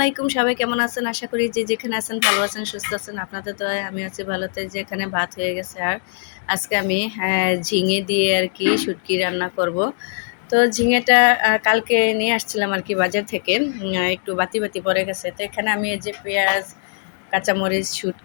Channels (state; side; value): silent; right; digital silence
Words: সবাই কেমন আছেন? আশা করি যে যেখানে আছেন ভালো আছেন, সুস্থ আছেন। আপনাদের তো আমি আছি ভালোতে। যে এখানে ভাত হয়ে গেছে, আর আজকে আমি ঝিঙে দিয়ে আর কি শুটকি রান্না করব। তো ঝিঙেটা কালকে নিয়ে আসছিলাম আর কি বাজার থেকে, একটু বাতি বাতি পড়ে গেছে। তো এখানে আমি এই যে পেঁয়াজ, কাঁচামরিচ,